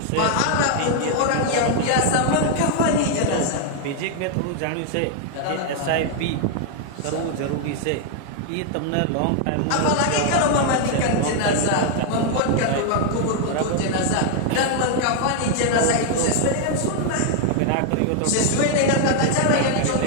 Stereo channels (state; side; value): different; both; correlation 0.00